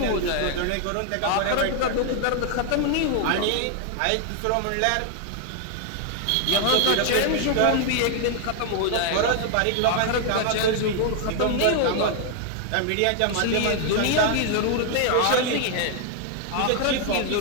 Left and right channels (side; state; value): both; different; correlation 0.00